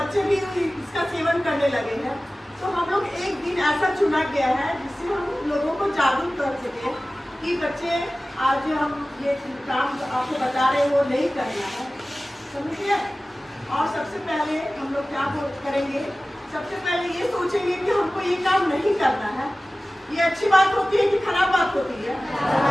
भी इसका सेवन करने लगे हैं। तो हम लोग एक दिन ऐसा चुना गया है जिससे हम लोगों को जागरूक कर सके कि बच्चे आज हम ये काम आपको बता रहे हैं वो नहीं करना है, समझिए। और सबसे पहले हम लोग क्या करेंगे, सबसे पहले ये सोचेंगे कि हमको ये काम नहीं करना है। ये अच्छी बात होती है कि खराब बात होती है?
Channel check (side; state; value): both; normal; correlation 0.97